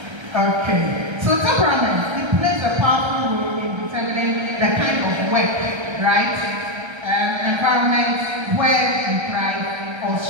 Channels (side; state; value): left; late; 1.3 ms